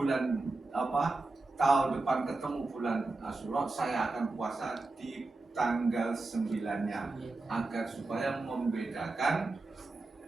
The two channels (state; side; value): quieter; left; 3.3 dB